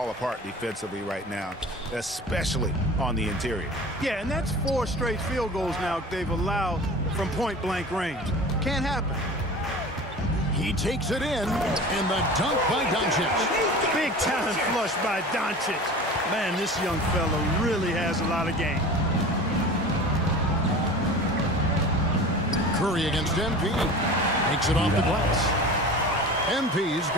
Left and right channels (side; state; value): both; normal; correlation 0.37